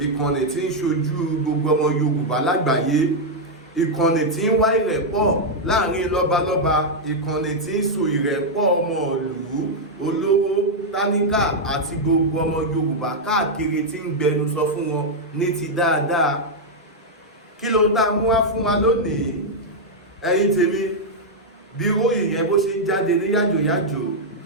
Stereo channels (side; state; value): both; normal; correlation -0.02